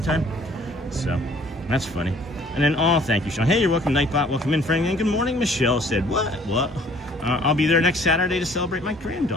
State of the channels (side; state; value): both; normal; correlation 0.56